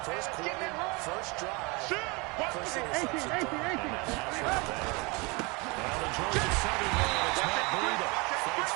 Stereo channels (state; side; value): quieter; left; 27.7 dB